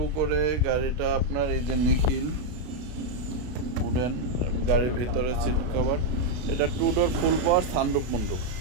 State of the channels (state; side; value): late; left; 32 ms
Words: করে গাড়িটা আপনার এই যে নিখিল উডেন, গাড়ির ভিতরে সিট কভার। এটা 2 door full power, sunroof moonroof.